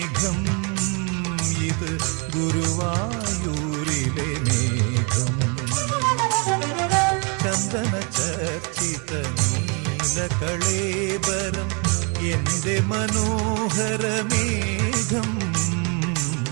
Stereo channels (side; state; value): left; quieter; 34.2 dB